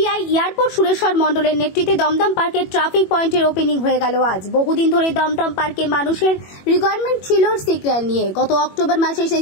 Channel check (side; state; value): right; late; 21 ms